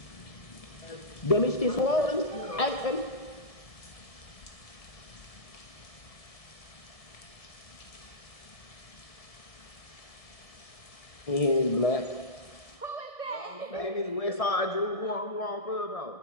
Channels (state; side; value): late; right; 1.7 ms